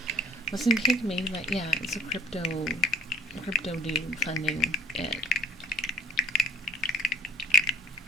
Wasn't Kik made by, yeah, it's a crypto dude funding it.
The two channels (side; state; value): both; normal; correlation 0.55